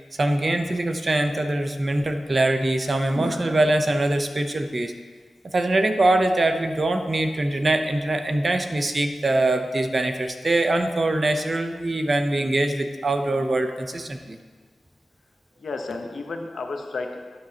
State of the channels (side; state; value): both; normal; correlation 0.94